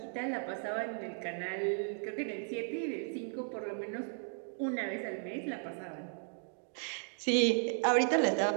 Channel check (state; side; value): silent; left; 54 dB below the other